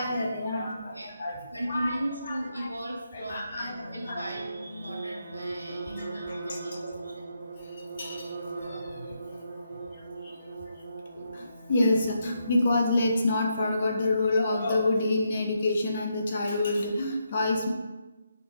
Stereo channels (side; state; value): both; inverted; correlation -0.80